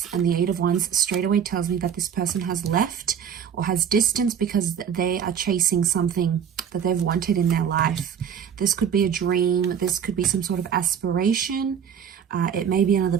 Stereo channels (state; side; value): quieter; left; 8.1 dB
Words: and the 8 of Wands straight away tells me that this person has left or has distanced because they are chasing something that they've wanted in their life. This could be a dream. This could be some sort of aspiration. It may be another